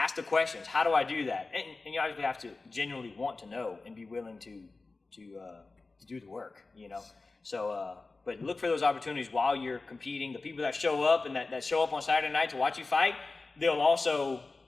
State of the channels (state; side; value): quieter; right; 3.7 dB